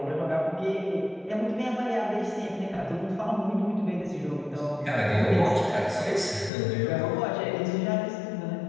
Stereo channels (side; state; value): right; drops out; at 6.5 s